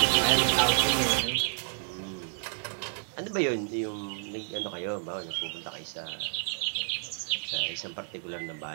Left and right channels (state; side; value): silent; left; digital silence